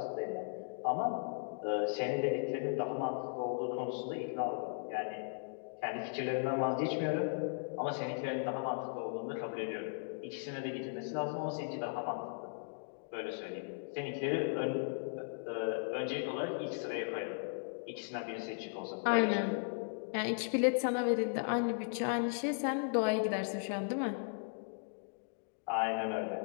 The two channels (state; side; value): silent; right; digital silence